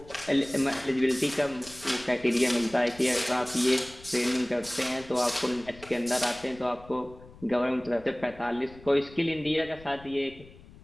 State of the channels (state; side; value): noise; left; rumble, 21 dB below the sound